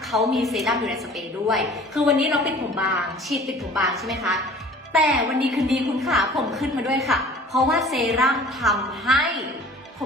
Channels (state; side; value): normal; both; correlation 0.47